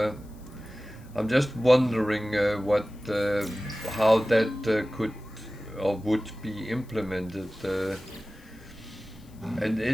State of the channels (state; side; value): noise; left; hiss, 28 dB below the sound